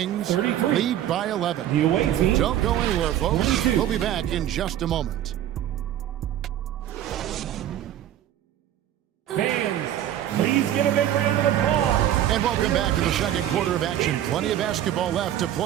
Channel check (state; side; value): quieter; left; 11.7 dB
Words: lead by 11. Don't go anywhere, folks. We'll be back in just a moment. Fans, please give a big round of applause. And welcome back to the second quarter of action. Plenty of basketball left to